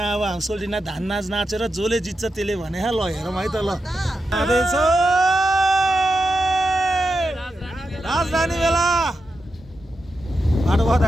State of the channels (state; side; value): normal; both; correlation 0.88